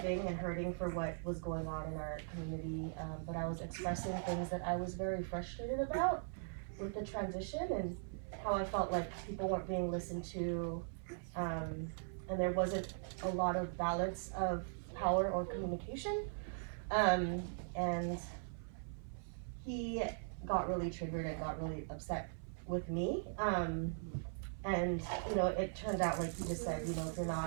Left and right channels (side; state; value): left; silent; 51 dB below the other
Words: and hurting for what was going on in our community, but I was expressing things that I was very frustrated about with the transition and how I felt like people weren't being listened to, and there wasn't a lot of balance of power or communication, and he got really triggered and got really upset with me, and it turned out, like you just said, if you're